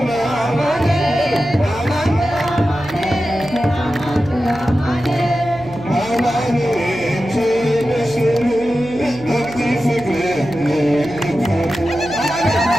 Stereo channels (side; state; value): right; noise; hum, 16 dB below the sound